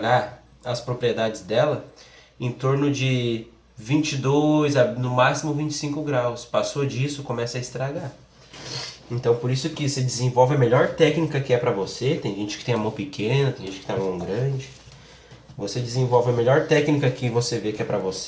as propriedades dela, em torno de 22 a no máximo 25 graus. Passou disso, começa a estragar. Então por isso que você desenvolve a melhor técnica que é para você. Tem gente que tem a mão pequena, tem gente que tem a mão grande. Você desenvolve a melhor técnica que você vê que é para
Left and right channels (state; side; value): identical; both; correlation 1.00